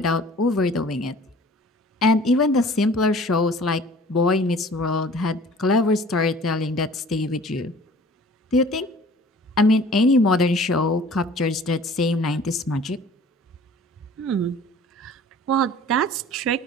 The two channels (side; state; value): both; normal; correlation 0.48